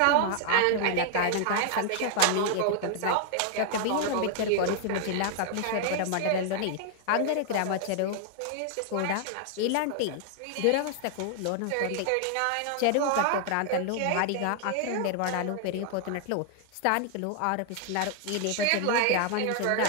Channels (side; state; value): both; different; correlation 0.00